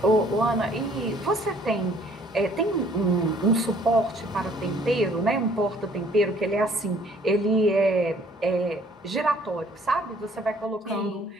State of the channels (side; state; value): both; normal; correlation 0.59